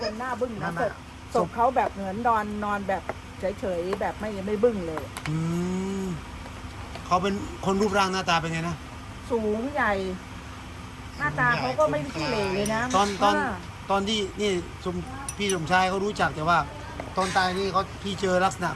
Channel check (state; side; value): identical; both; correlation 1.00